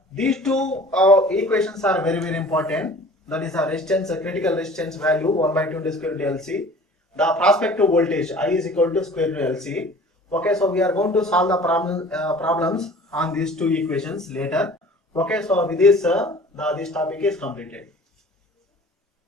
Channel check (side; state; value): both; normal; correlation 0.46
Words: These two equations are very important. That is a resistance, a critical resistance value 1 by 2 square root LC. The prospective voltage I is equal to square root LC. Okay, so we are going to solve the problems on these two equations later. Okay, so with this this topic is completed.